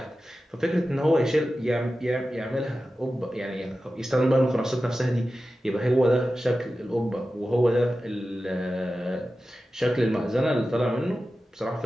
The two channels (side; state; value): both; normal; correlation 0.94